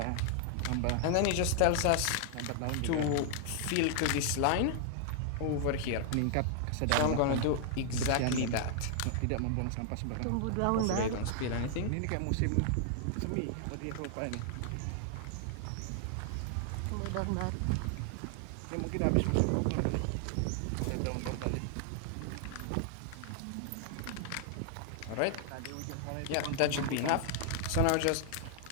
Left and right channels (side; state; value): both; different; correlation 0.00